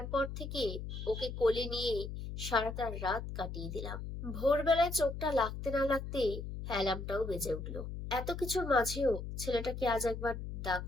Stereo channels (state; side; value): noise; left; hum, 7 dB below the sound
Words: থেকে ওকে কোলে নিয়ে সারাটা রাত কাটিয়ে দিলাম। ভোরবেলায় চোখটা লাগতে না লাগতেই অ্যালার্মটাও বেজে উঠলো। এত কিছুর মাঝেও ছেলেটাকে আজ একবার